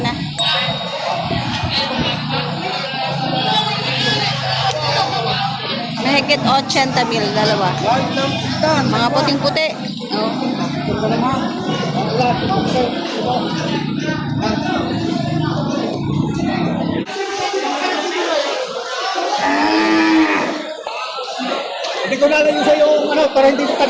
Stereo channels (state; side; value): identical; both; correlation 1.00